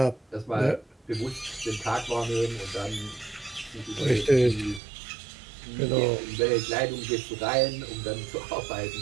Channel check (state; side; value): drops out; left; at 4.8 s